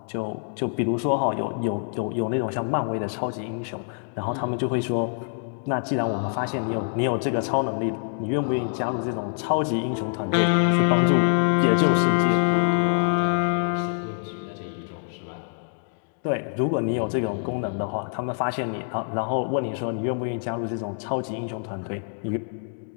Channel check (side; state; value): right; silent; digital silence